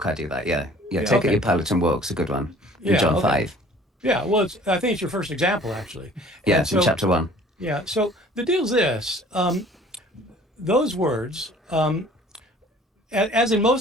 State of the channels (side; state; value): both; normal; correlation 0.51